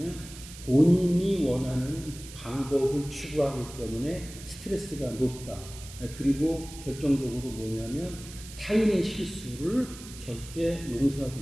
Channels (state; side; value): noise; right; hiss, 15 dB below the sound